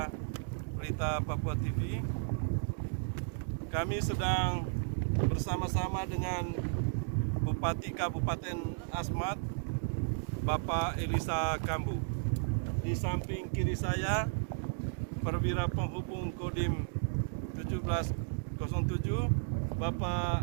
berita Papua TV. Kami sedang bersama-sama dengan Bupati Kabupaten Asmat, Bapak Elisa Kambu. Di samping kiri saya, Perwira Penghubung Kodim 1707, Bapak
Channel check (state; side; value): silent; left; digital silence